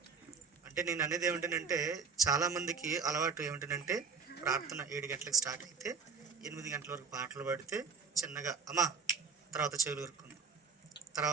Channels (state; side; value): quieter; left; 5.5 dB